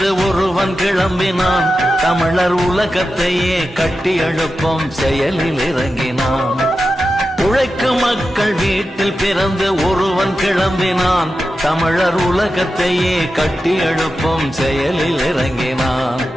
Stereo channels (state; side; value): normal; both; correlation 0.91